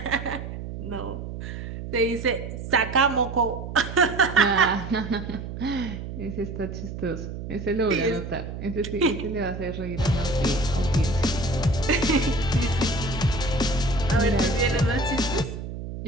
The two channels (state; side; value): noise; right; hum, 8 dB below the sound